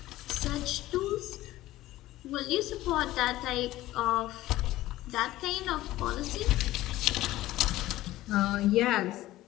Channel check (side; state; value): right; quieter; 16.0 dB